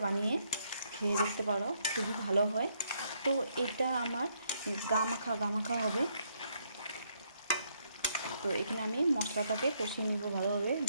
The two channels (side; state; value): both; inverted; correlation -0.72